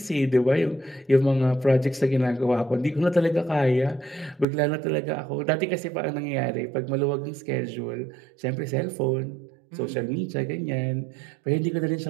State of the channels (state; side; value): drops out; left; at 4.5 s